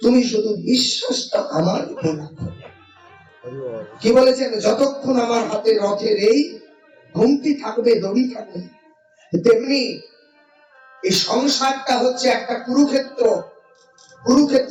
তুমি শুধু বিশ্বাসটা আমার উপর রাখো। কি বলেছেন? যতক্ষণ আমার হাতে রথের এই ঘুমটি থাকবে, দড়ি থাকবে। তেমনি এই সংসারটা হচ্ছে একটা কুরুক্ষেত্র,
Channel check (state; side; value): identical; both; correlation 1.00